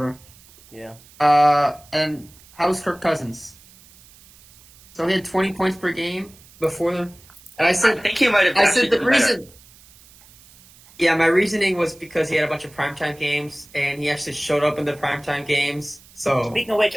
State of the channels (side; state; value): right; noise; hiss, 25 dB below the sound